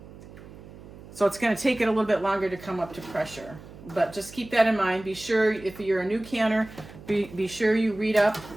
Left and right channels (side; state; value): right; noise; hum, 18 dB below the sound